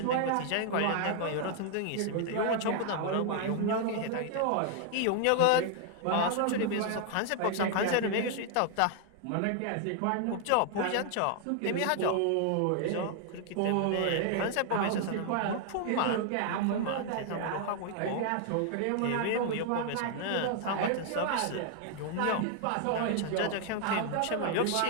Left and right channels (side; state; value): both; different; correlation 0.00